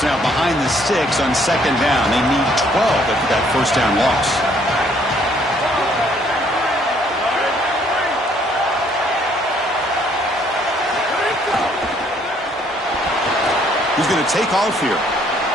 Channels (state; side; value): normal; both; correlation 0.65